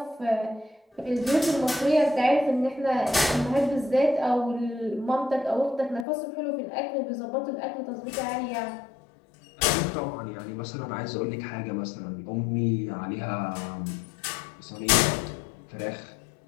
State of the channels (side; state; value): right; drops out; at 6.1 s